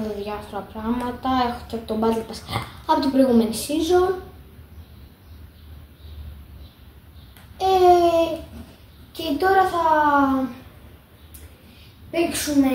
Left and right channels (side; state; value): both; identical; correlation 1.00